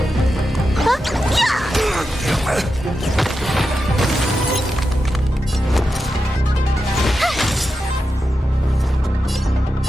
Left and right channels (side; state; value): both; normal; correlation 0.89